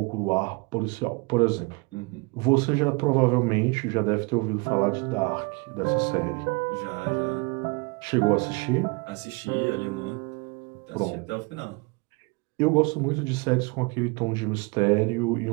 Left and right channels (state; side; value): quieter; left; 28.6 dB